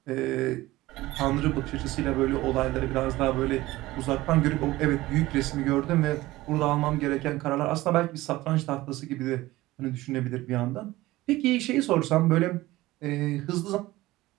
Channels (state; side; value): quieter; left; 18.0 dB